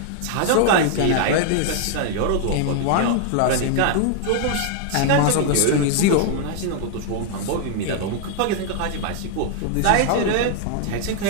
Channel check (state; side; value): different; both; correlation 0.00